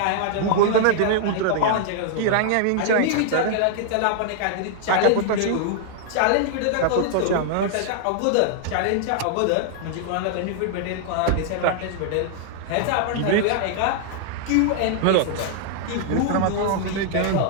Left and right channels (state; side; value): different; both; correlation -0.01